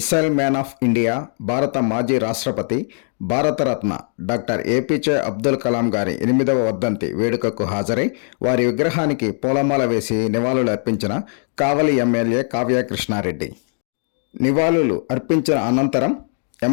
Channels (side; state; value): right; silent; 61 dB below the other